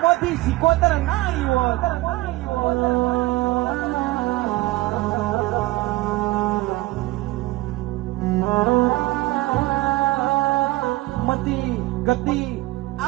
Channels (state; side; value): quieter; left; 19.2 dB